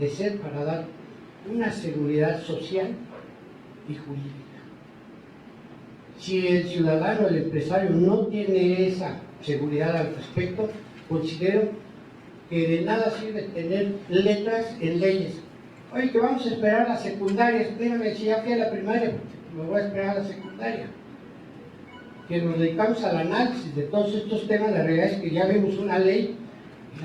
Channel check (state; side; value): identical; both; correlation 1.00